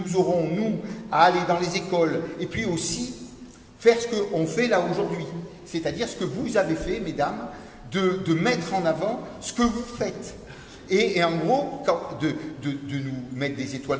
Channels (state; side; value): identical; both; correlation 1.00